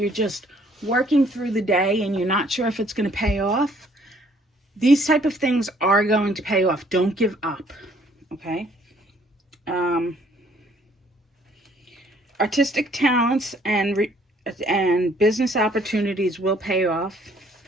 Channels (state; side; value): normal; both; correlation 0.62